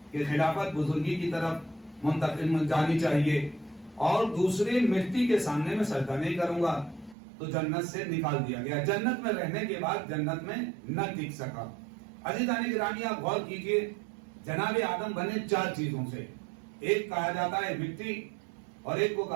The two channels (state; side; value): drops out; left; at 7.2 s